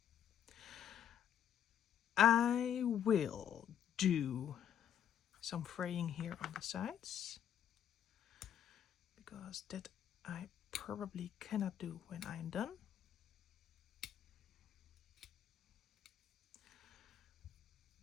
I will do some fraying here on the sides, because that I probably cannot do when I'm done.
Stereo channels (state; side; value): quieter; right; 9.5 dB